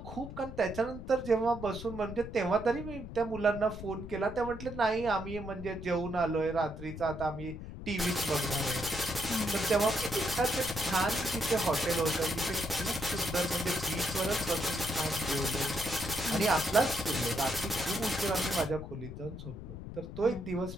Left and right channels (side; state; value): left; noise; rumble, 10 dB below the sound